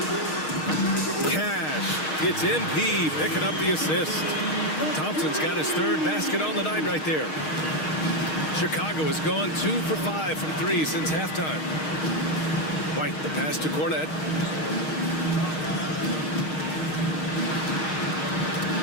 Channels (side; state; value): right; late; 6.4 ms